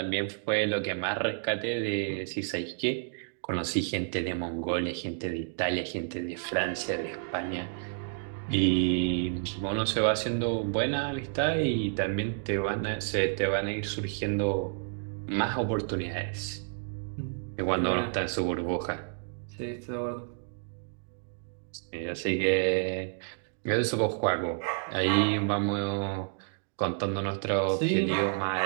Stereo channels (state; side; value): silent; left; digital silence